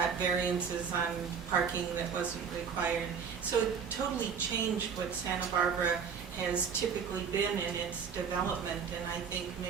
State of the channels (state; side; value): quieter; left; 6.6 dB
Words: variances on parking that wasn't required. So it totally changed what Santa Barbara has typically been in its development, and I think